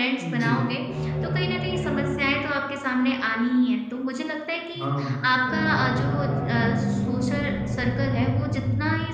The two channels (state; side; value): identical; both; correlation 1.00